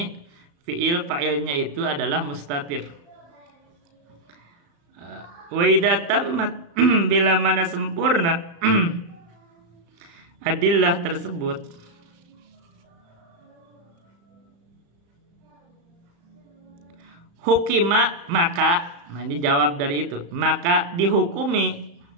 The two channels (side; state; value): left; late; 35 ms